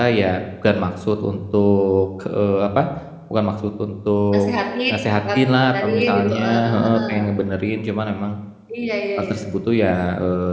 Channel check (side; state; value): both; identical; correlation 1.00